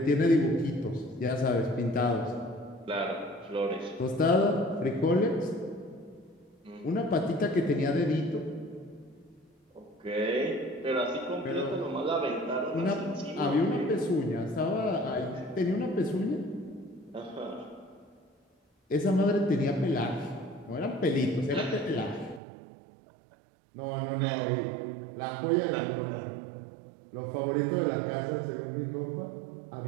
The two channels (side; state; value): left; drops out; at 22.4 s